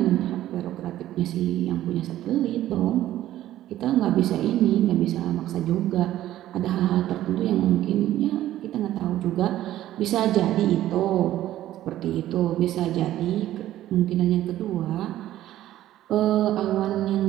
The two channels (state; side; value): quieter; left; 13.5 dB